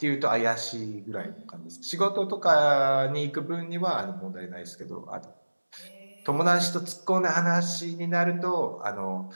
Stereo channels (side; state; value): both; inverted; correlation -1.00